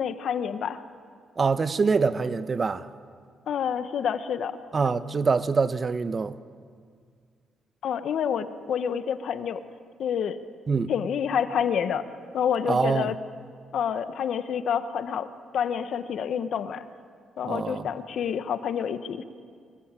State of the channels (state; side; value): normal; both; correlation 0.74